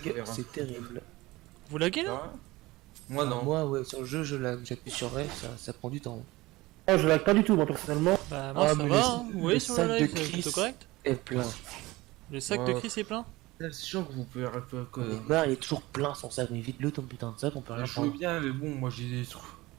faut faire un- c'est terrible. Vous laguez là? Ah, moi non. Moi, ouais, sur le jeu, je lag. J'appuie sur F, ça prend du temps. Oh, je lag pas du tout, moi personnellement. Bah moi Ah, ça mais va, le- hein. Vous voyez le sur sac le de live, c'est Chris. plutôt correct. Et plein. Le sac de Ouais. Chris est plein. C'est sûr que vous pouvez que. Neymar, il est toujours plein son sac, mais vite-le ton putain de sac, on peut rien Je veux prendre. bien, mais bon, moi j'ai des trucs.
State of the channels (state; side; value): quieter; left; 20.1 dB